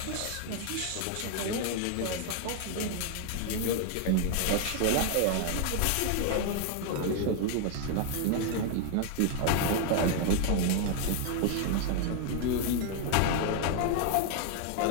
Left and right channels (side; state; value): both; different; correlation 0.00